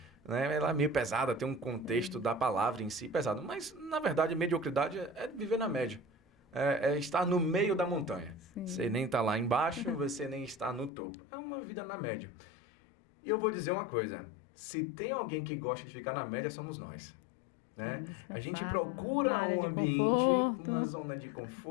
né? Ela é meio pesada, tem um contexto da palavra em si pesado. Mas, na verdade, mediocridade é viver na média. É estar no meio da montanha. Sim. Você nem está lá embaixo, você nem está no topo. É uma vida na média. E eu vou dizer uma coisa. Se tem alguém que gosta de ficar na média, somos nós. Né? A gente procura um ambiente, uma zona de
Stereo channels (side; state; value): right; drops out; at 10.9 s